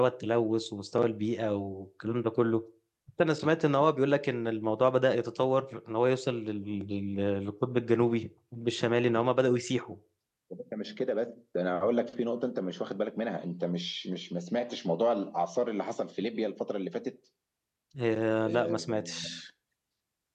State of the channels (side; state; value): both; identical; correlation 1.00